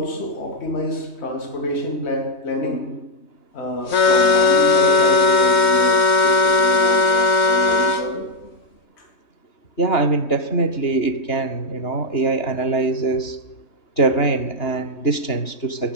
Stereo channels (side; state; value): right; late; 3.2 ms